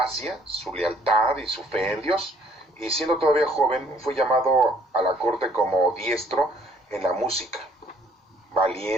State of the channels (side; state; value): both; normal; correlation 0.61